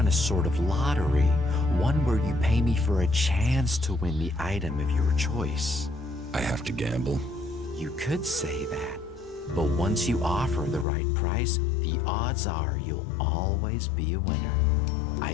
a sort of lottery, one where you pay me for a chance to win the item of your choice. I have to gamble? You could say that, but once you offer the right price, the odds are you'll always be a winner.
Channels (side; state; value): right; drops out; at 10.9 s